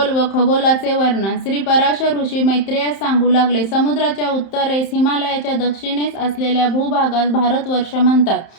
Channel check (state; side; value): late; right; 31 ms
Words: व खगोलाचे वर्णन. श्री पराशर ऋषी मैत्रेयास सांगू लागले, समुद्राच्या उत्तरेस, हिमालयाच्या दक्षिणेस असलेल्या भूभागास भारतवर्ष म्हणतात.